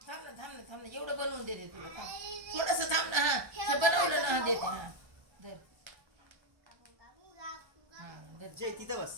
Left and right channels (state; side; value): late; left; 1.3 ms